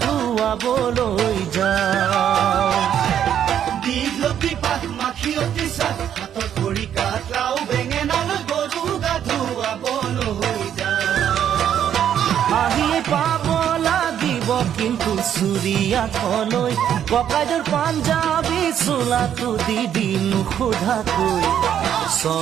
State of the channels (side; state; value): left; quieter; 9.6 dB